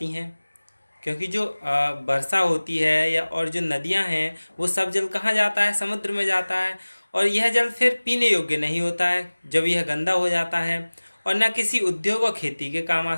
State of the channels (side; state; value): both; inverted; correlation -1.00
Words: हैं, क्योंकि जो वर्षा होती है या और जो नदियां हैं वो सब जल कहाँ जाता है, समुद्र में जाता है। और यह जल फिर पीने योग्य नहीं होता है जब यह गंदा हो जाता है, और न किसी उद्योग और खेती के काम आ